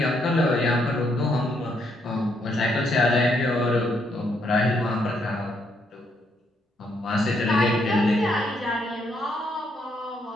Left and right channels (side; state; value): both; normal; correlation 0.74